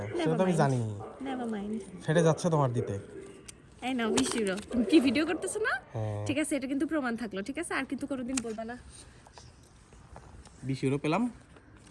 সেটা তো আমি জানি। Never mind. ফেটে যাচ্ছে তোমার দিতে। এই নাও 20 ইউরো। কি ভিডিও করতেছ না? হ্যাঁ। ঠিক আছে এটা কিন্তু প্রমাণ থাকলো, ঠিক আছে? আর কিন্তু কোনোদিন বলবা না। 20 ইউরো পেলাম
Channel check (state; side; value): identical; both; correlation 1.00